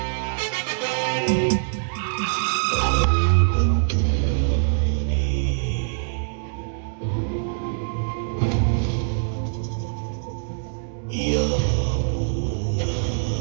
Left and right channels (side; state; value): left; silent; digital silence